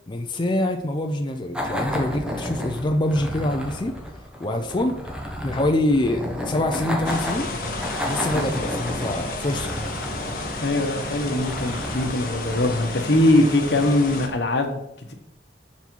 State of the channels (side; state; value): both; normal; correlation 0.60